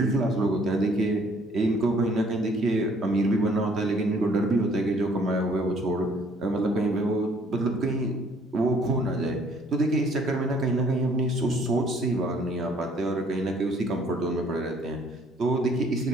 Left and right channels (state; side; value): normal; both; correlation 0.60